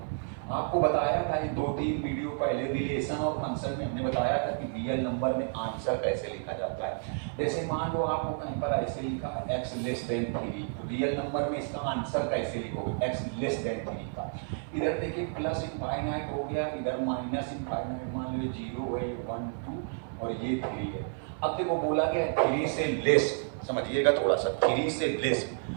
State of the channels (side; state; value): left; silent; 57 dB below the other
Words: आपको बताया था ये 2-3 वीडियो पहले रिलेशन और फंक्शन में हमने बताया था कि रियल नंबर में आंसर कैसे लिखा जाता है। जैसे मान लो आपको कहीं पर ऐसे लिखा है x लेस देन 3, तो रियल नंबर में इसका आंसर कैसे लिखोगे, x लेस देन 3 का। इधर देखिए प्लस इनफाइनाइट हो गया, इधर माइनस इनफाइनाइट, मान लो 0 है, 1 2 और ये 3 है। अब देखो बोला गया 3 से लेस, समझिएगा थोड़ा सा, 3 से लेस,